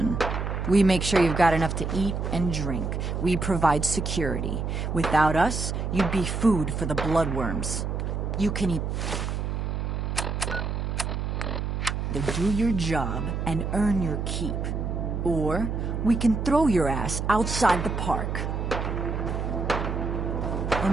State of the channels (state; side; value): noise; right; hum, 2 dB below the sound